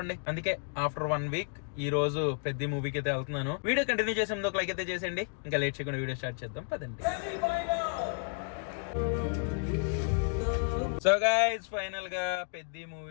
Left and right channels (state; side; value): silent; right; 57 dB below the other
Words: అందుకే ఆఫ్టర్ 1 వీక్ ఈ రోజు పెద్ద మూవీకి అయితే వెళ్తున్నాను. వీడియో కంటిన్యూ చేసే ముందు ఒక లైక్ అయితే చేసేయండి. ఇంకా లేట్ చేయకుండా వీడియో స్టార్ట్ చేద్దాం పదండి. సో గైస్ ఫైనల్ గా పెద్ద